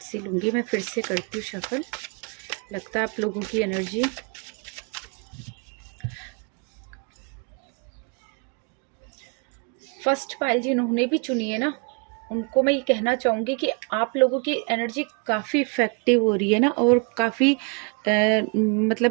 लूँगी मैं, फिर से करती हूँ शफल। लगता है आप लोगों की एनर्जी फर्स्ट पाइल जिन्होंने भी चुनी है ना, उनको मैं ये कहना चाहूँगी कि आप लोगों की एनर्जी काफ़ी इफ़ेक्टिव हो रही है ना, और काफ़ी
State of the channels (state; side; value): quieter; left; 35.4 dB